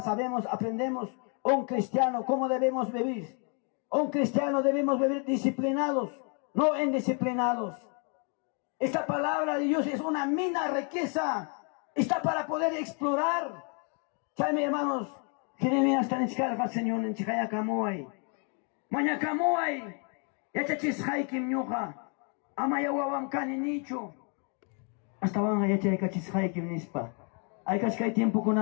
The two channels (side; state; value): right; quieter; 38.8 dB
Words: sabemos, aprendemos un cristiano cómo debemos vivir. Un cristiano debemos vivir disciplinados, no indisciplinados. Esta palabra de Dios es una mina riqueza. Está para poder explorar. Chame hermanos, Jeremías está en Chicarga, Señor, en Chicaya Camoay. Maña Camoay, Yachachis Haikim Ñuja, Amaya Wawam Kani Nicho. Hasta van a Yachachis Haikim Nispa. Hay que tiempo con